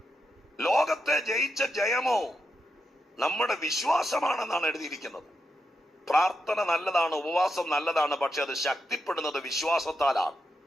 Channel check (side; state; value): both; normal; correlation 0.85